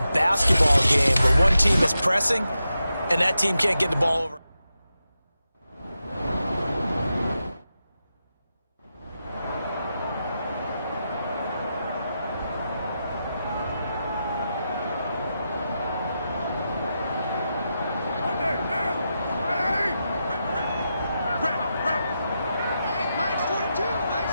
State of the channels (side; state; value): both; inverted; correlation -0.88